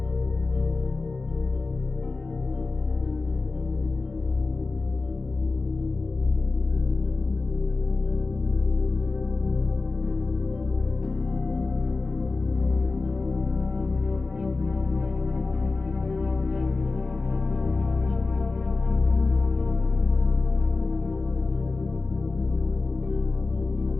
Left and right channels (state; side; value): quieter; right; 3.7 dB